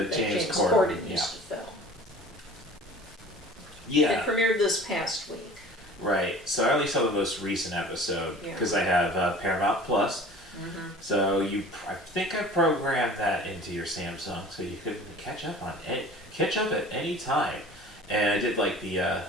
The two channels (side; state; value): both; normal; correlation 0.44